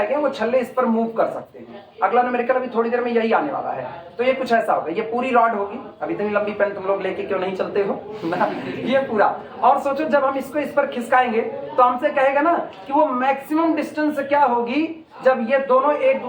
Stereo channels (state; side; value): identical; both; correlation 1.00